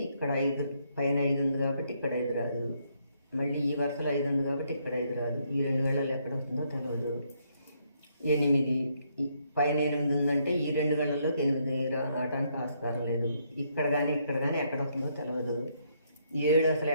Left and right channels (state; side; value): inverted; both; correlation -0.73